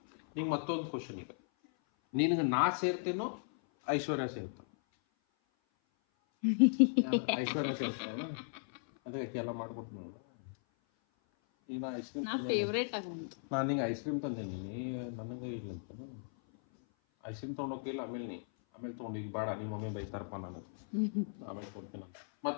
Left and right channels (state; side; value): silent; right; 53 dB below the other